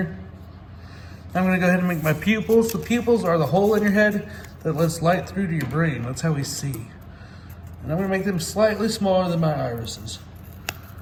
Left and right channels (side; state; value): both; identical; correlation 1.00